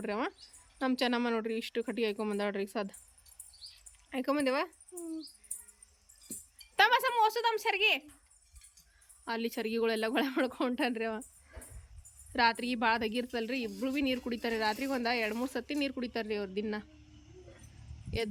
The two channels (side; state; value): both; identical; correlation 1.00